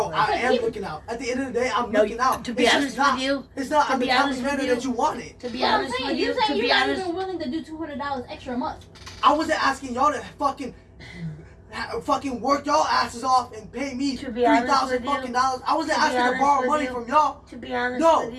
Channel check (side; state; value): both; identical; correlation 1.00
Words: I But am people- looking out. At the end of the day, I'm No, looking out. to be It's honest just not, with you, it's not to I'm the be type honest of with manner you- that you wanted. to be But I'm honest saying, with you you, saying to you're be not honest, even willing to do $200 extra a month. I wasn't asking y'all to fucking work y'all asses off and pay me To be honest $3,000 with you- fucking dollars. I wasn't to be asking to honest borrow with money you- from y'all. to be honest No. with